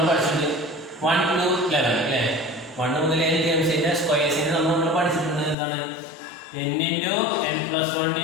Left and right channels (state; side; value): drops out; right; at 5.6 s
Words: പഠിച്ചത്? 1 to 11 അല്ലേ. 1 മുതൽ n ടൈംസിന്റെ സ്ക്വയേഴ്സിന്റെ സം നമ്മൾ പഠിച്ചിട്ടുണ്ട്. എന്താണ്? n into n plus 1